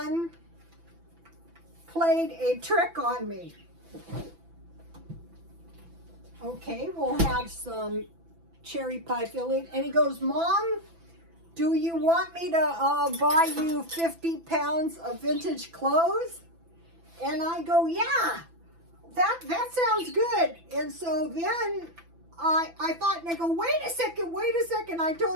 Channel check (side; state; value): left; late; 6.0 ms